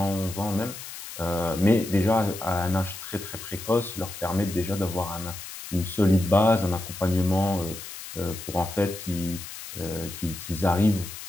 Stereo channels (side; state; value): left; noise; hiss, 11 dB below the sound